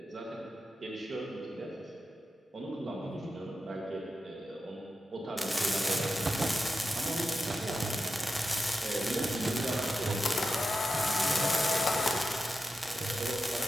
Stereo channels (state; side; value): normal; both; correlation 0.90